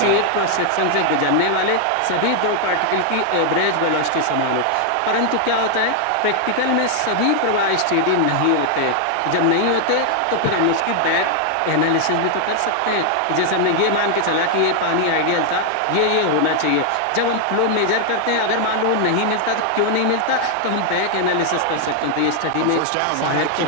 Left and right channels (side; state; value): both; different; correlation 0.00